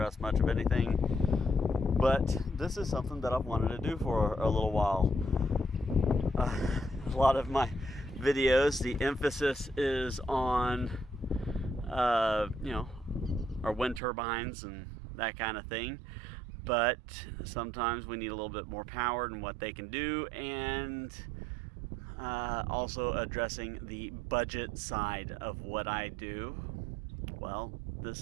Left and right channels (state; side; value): drops out; left; at 14.0 s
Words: much of anything. But this is something that I've wanted to do for a little while. A lot of my videos, the emphasis is on, our wind turbines and that kind of thing. But sometimes we need a little bit more power than what they can do, and also addressing the budget side of what I do. Well,